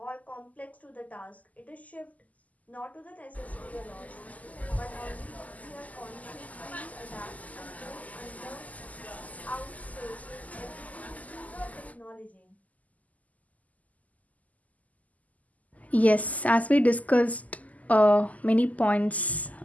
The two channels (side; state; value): right; late; 0.076 ms